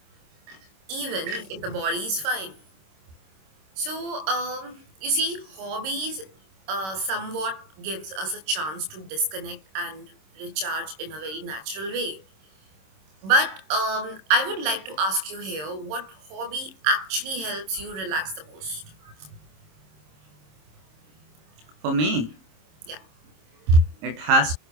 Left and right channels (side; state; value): left; late; 26 ms